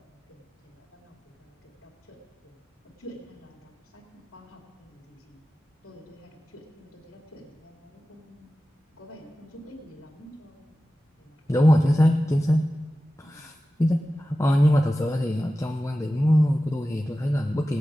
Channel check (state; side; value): normal; both; correlation 0.95